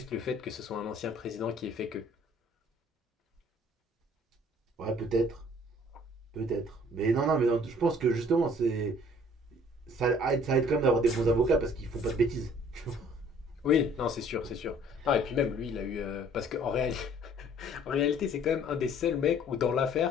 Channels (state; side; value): normal; both; correlation 0.56